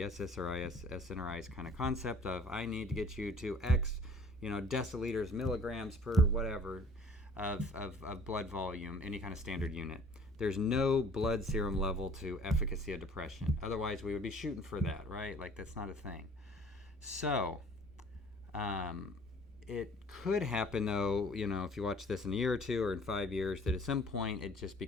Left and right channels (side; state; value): both; normal; correlation 0.53